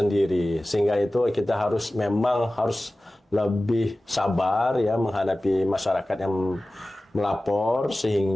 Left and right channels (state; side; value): normal; both; correlation 0.97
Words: sehingga itu kita memang harus lebih sabar ya menghadapi masyarakat yang melapor,